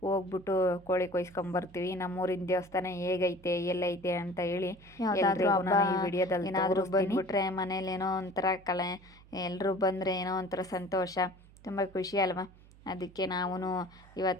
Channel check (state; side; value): noise; right; hum, 24 dB below the sound